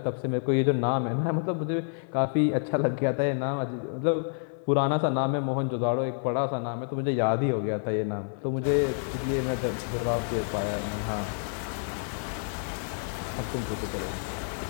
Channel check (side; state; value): right; silent; 59 dB below the other